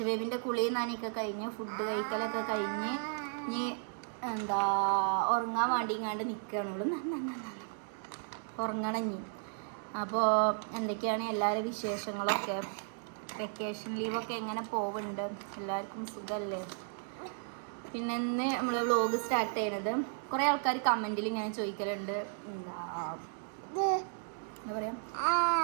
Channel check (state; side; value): silent; left; digital silence